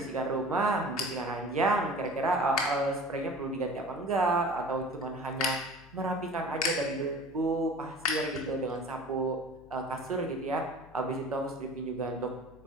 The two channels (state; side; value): noise; left; hum, 24 dB below the sound